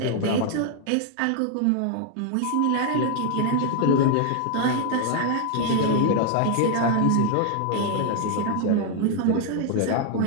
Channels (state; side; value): different; both; correlation 0.00